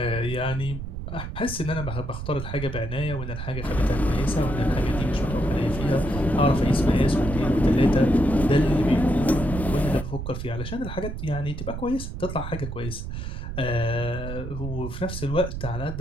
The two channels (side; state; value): right; noise; rumble, 7 dB below the sound